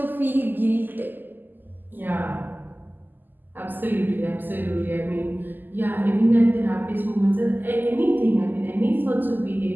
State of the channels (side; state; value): left; late; 0.089 ms